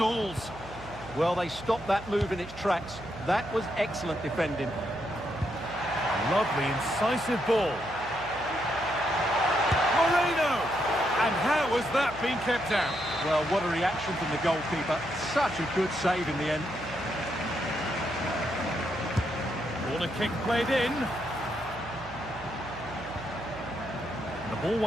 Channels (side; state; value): right; noise; hum, 16 dB below the sound